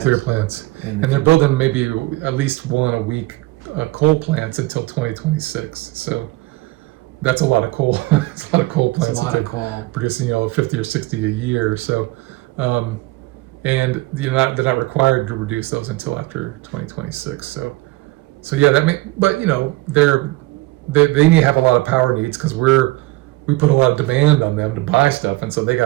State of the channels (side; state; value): left; quieter; 20.3 dB